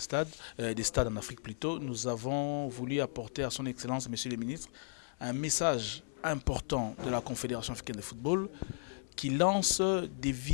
des stades en Afrique plutôt, nous avons voulu apporter à son Excellence, Monsieur le Ministre, un message important de la Confédération africaine de football qui lance des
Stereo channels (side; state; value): right; silent; 54 dB below the other